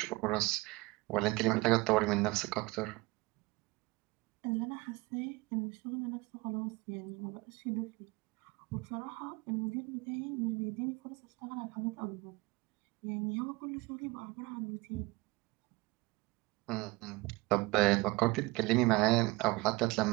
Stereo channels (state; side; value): quieter; left; 22.7 dB